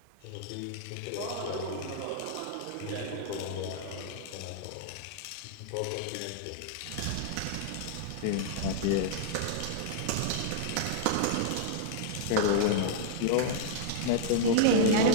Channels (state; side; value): different; both; correlation -0.01